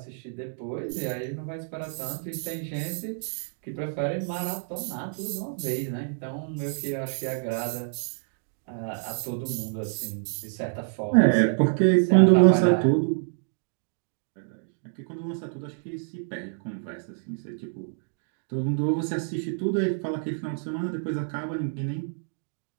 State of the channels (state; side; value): silent; left; digital silence